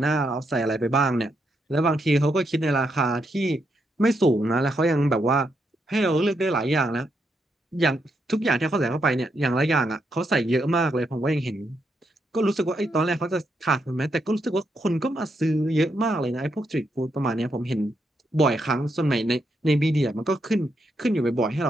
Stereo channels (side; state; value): both; normal; correlation 0.80